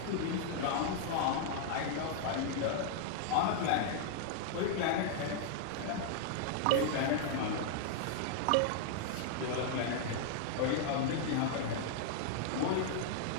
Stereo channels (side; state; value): both; different; correlation 0.00